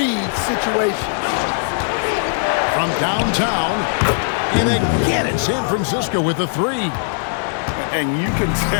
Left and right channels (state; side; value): silent; right; digital silence